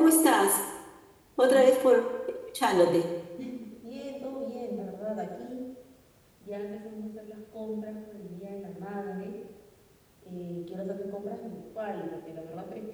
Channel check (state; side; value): identical; both; correlation 1.00